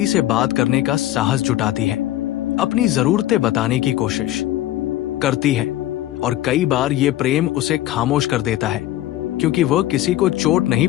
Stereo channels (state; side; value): quieter; right; 14.4 dB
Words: से बात करने का साहस जुटाती है, अपनी जरूरतें बताने की कोशिश करती है, और कई बार ये प्रेम उसे खामोश कर देता है, क्योंकि वह किसी को चोट नहीं